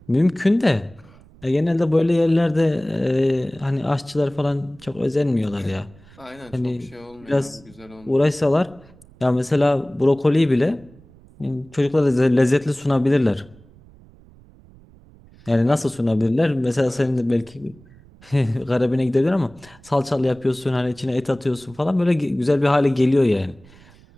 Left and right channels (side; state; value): right; noise; rumble, 25 dB below the sound